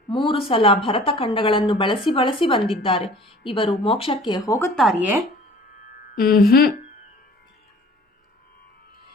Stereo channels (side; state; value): both; normal; correlation 0.48